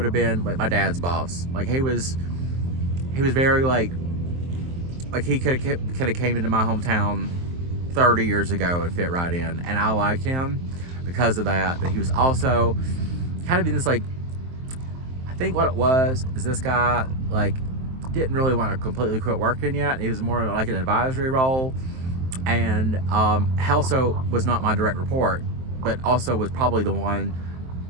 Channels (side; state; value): left; late; 23 ms